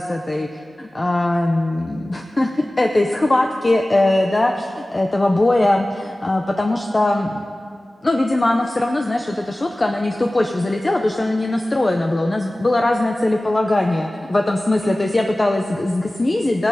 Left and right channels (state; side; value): normal; both; correlation 0.97